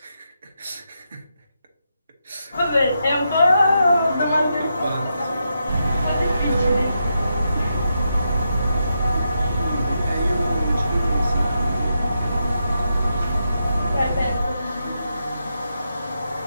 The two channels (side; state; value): both; inverted; correlation -0.84